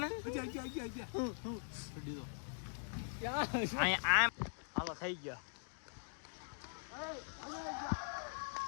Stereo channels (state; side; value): silent; right; digital silence